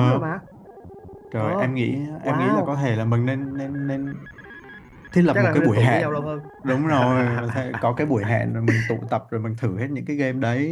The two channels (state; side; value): identical; both; correlation 1.00